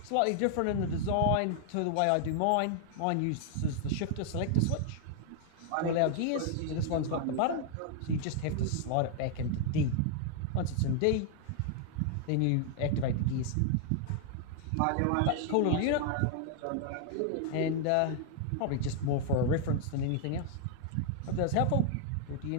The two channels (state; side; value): different; both; correlation 0.00